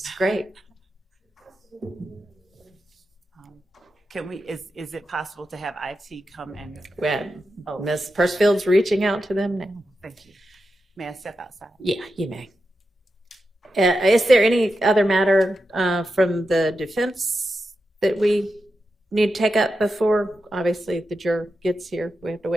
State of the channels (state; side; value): normal; both; correlation 0.89